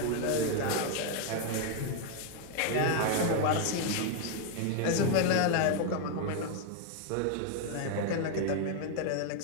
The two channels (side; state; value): both; different; correlation 0.00